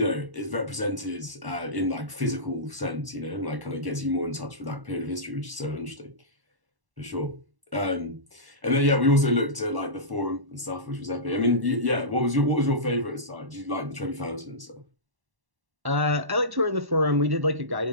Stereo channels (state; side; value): late; left; 1.1 ms